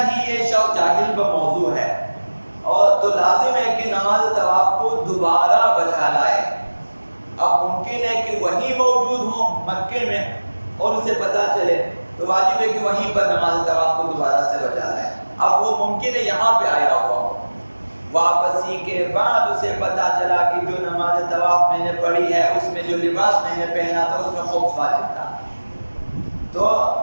یہ شخص جاہل بموضوع ہے، اور تو لازم ہے کہ نماز طواف کو دوبارہ بجا لائے۔ اب ممکن ہے کہ وہیں موجود ہوں مکے میں اور اسے پتہ چلے تو واجب ہے کہ وہیں پر نماز طواف کو دوبارہ سے بجا لائے۔ اب وہ ممکن ہے یہاں پہ آیا ہوا ہو، واپسی کے بعد اسے پتہ چلا کہ جو نماز طواف میں نے پڑھی ہے اس میں جو لباس میں نے پہنا تھا اس میں خمس واجب تھا، تو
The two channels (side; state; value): both; inverted; correlation -1.00